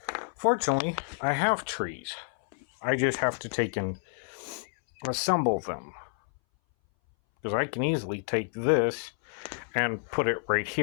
fortunately I have trees. I just have to take and assemble them. Because I can easily take this and put it right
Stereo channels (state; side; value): silent; right; 58 dB below the other